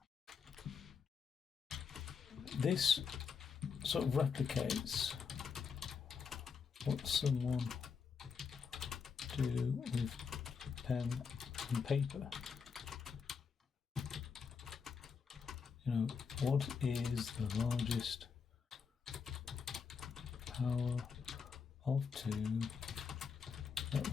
this sort of replicates what someone do with pen and paper. You know, what is the largest power of 2 that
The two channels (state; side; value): quieter; right; 6.0 dB